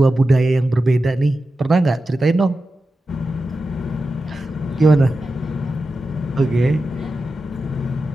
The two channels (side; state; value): both; normal; correlation 0.92